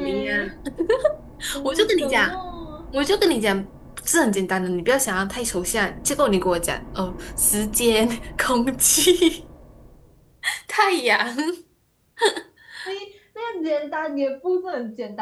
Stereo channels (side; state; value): both; identical; correlation 1.00